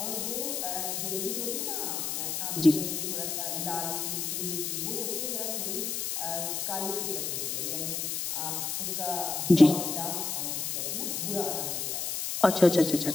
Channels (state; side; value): noise; left; hiss, 2 dB below the sound